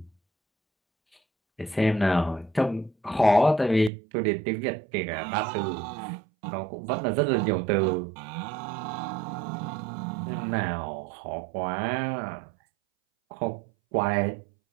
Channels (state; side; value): drops out; left; at 3.9 s